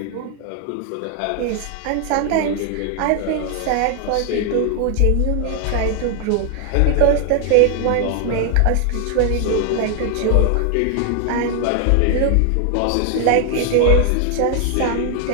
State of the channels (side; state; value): both; different; correlation 0.00